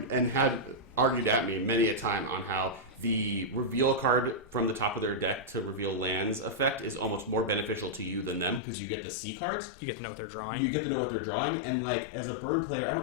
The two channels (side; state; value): right; drops out; at 8.6 s